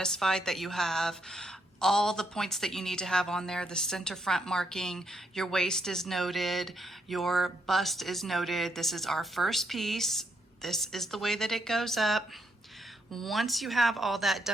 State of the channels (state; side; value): normal; both; correlation 0.76